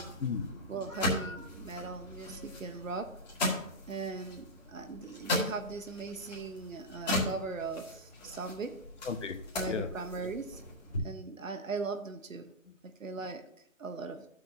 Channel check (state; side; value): normal; both; correlation -0.05